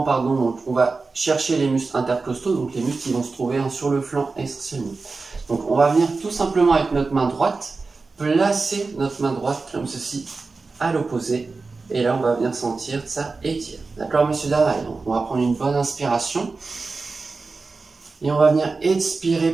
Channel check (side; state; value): left; quieter; 4.0 dB